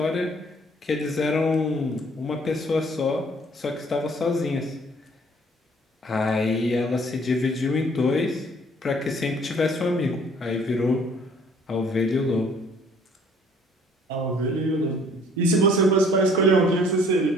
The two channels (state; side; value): normal; both; correlation 0.58